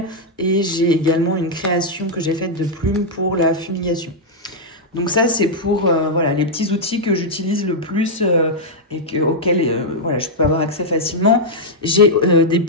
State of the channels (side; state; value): both; normal; correlation -0.04